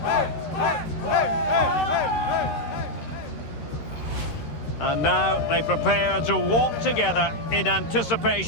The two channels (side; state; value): right; late; 13 ms